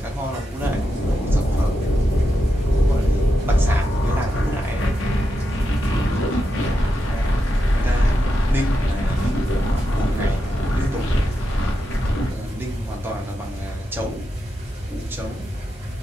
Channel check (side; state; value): both; normal; correlation 0.86